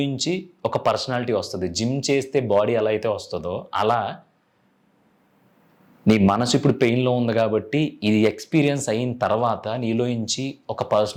ఒక పర్సనాలిటీ వస్తుంది. జిమ్ చేస్తే బాడీ ఎలా అయితే వస్తుందో అలా నీ మనసు ఇప్పుడు పెయిన్లో ఉంది కాబట్టి ఇది ఎక్స్పీరియన్స్ అయిన తర్వాత నీలోంచి ఒక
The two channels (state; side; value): identical; both; correlation 1.00